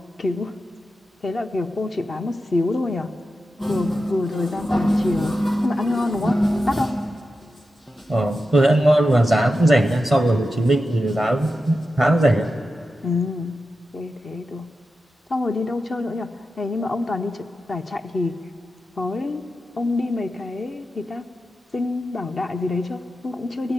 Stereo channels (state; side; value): normal; both; correlation 0.90